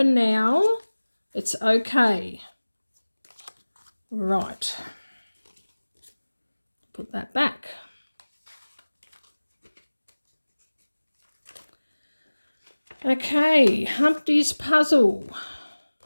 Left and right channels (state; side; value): inverted; both; correlation -1.00